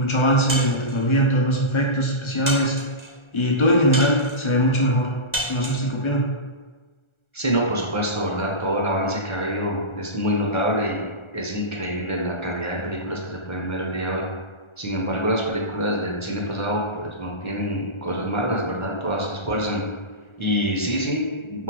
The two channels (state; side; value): late; right; 1.4 ms